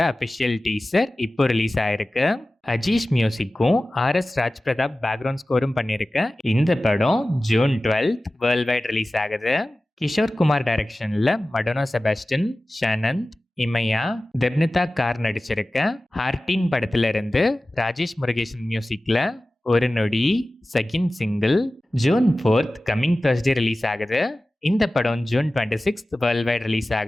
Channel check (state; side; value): normal; both; correlation 0.96